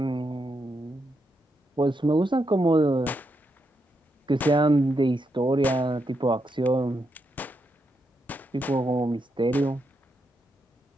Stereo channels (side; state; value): both; normal; correlation 0.82